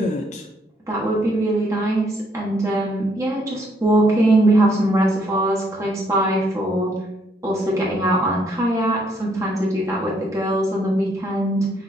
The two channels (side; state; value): both; normal; correlation 0.70